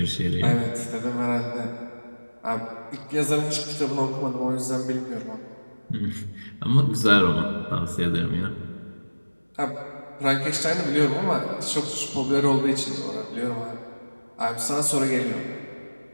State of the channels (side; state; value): both; inverted; correlation -1.00